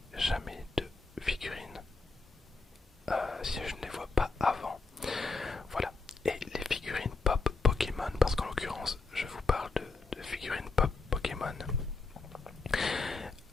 jamais de figurines si je ne les vois pas avant. Voilà. Et les figurines pop Pokémon, parce qu'en l'occurrence, je vous parle de figurines pop Pokémon,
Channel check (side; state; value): right; quieter; 3.8 dB